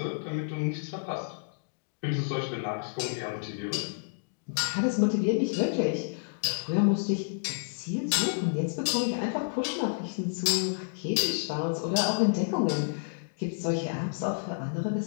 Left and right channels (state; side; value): silent; right; digital silence